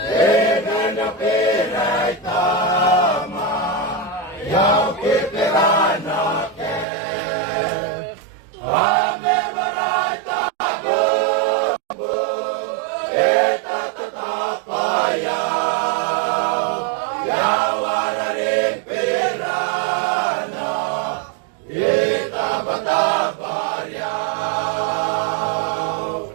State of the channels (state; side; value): drops out; left; at 6.9 s